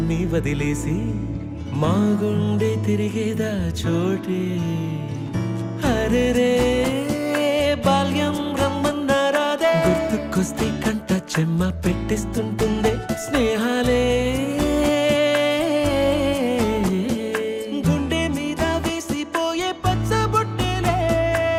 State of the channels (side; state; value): both; identical; correlation 1.00